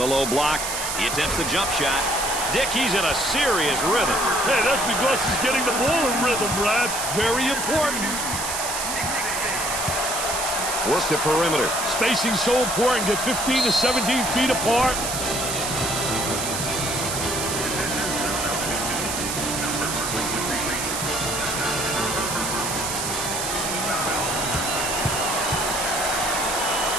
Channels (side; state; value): right; noise; hiss, 3 dB below the sound